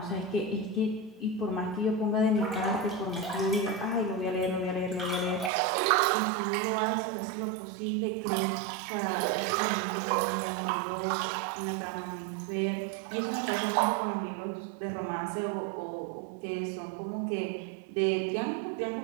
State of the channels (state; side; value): drops out; left; at 5.5 s